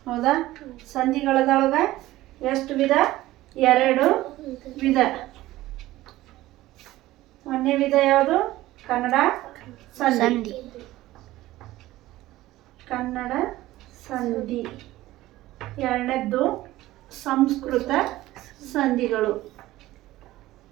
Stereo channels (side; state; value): left; quieter; 16.5 dB